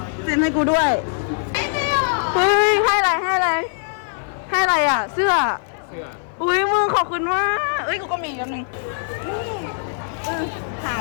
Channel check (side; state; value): right; silent; 56 dB below the other